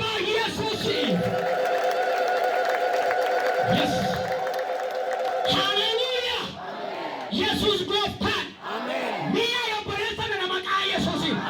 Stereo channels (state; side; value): identical; both; correlation 1.00